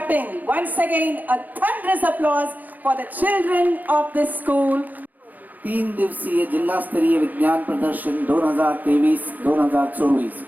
Once again, a thunderous applause for the children of this school. 3 दिवसीय जिल्हास्तरीय विज्ञान प्रदर्शन 2023-2024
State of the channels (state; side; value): late; left; 0.083 ms